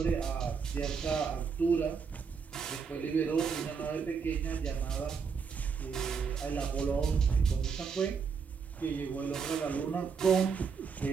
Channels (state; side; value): quieter; left; 5.9 dB